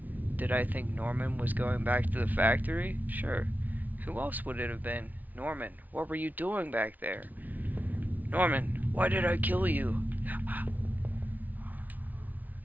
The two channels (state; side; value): late; left; 0.079 ms